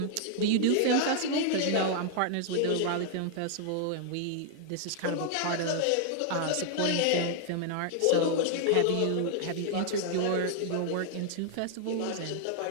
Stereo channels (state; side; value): different; both; correlation 0.00